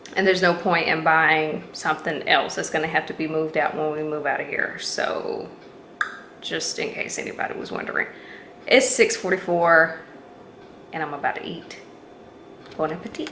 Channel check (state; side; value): identical; both; correlation 1.00